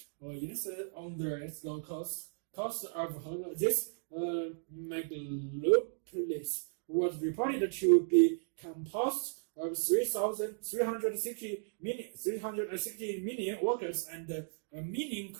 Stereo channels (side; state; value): left; silent; digital silence